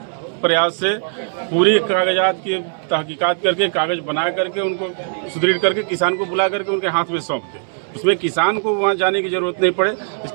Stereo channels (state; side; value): silent; left; digital silence